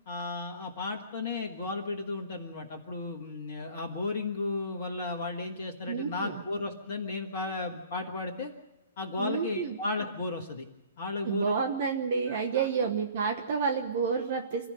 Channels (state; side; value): inverted; both; correlation -0.49